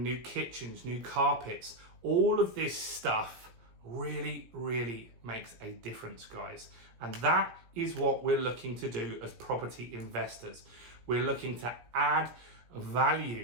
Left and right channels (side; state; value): left; late; 17 ms